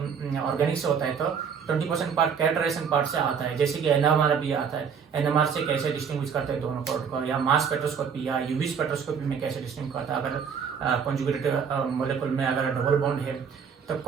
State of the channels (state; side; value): quieter; left; 6.8 dB